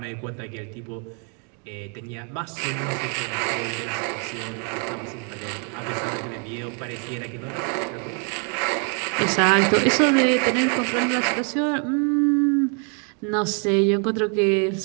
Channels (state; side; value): quieter; left; 39.5 dB